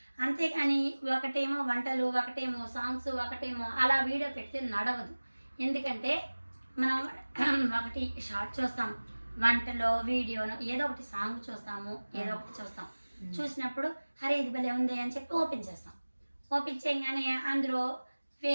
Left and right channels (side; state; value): both; inverted; correlation -1.00